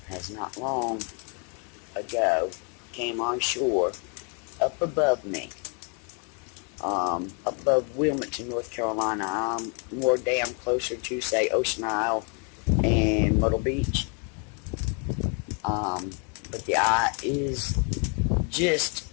has not long ago came on shore up above me. Above Wilmington, North Carolina. I'm more damn closer to, say, Ocean Isle and Myrtle Beach. But the eye is just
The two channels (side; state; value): right; quieter; 37.6 dB